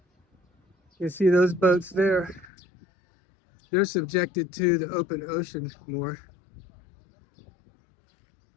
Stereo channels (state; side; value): drops out; right; at 2.5 s